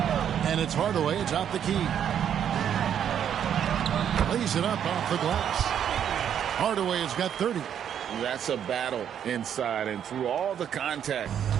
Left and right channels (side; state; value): left; quieter; 9.1 dB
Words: And it's Hardaway atop the key. Lays it up off the glass. Hardaway has got 30. That's a battle inside, and through all the contact,